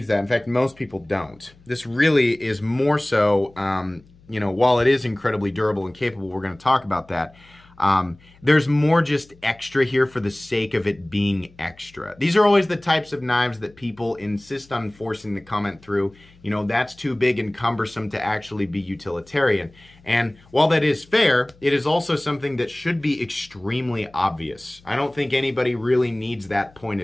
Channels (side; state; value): left; noise; hum, 27 dB below the sound